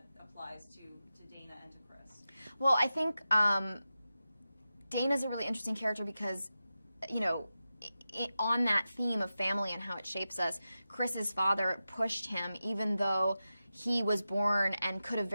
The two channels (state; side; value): inverted; both; correlation -0.92